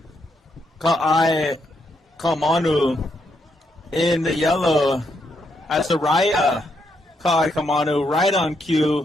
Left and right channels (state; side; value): normal; both; correlation 0.78